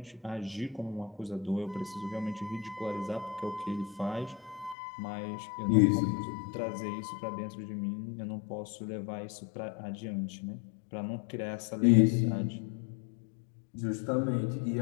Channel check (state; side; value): drops out; right; at 4.8 s